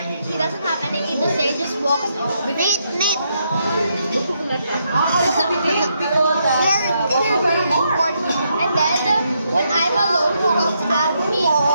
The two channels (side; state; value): both; inverted; correlation -0.78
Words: doesn't have anything to say, just walks off. Nate. And then when I'm alone, he comes at me.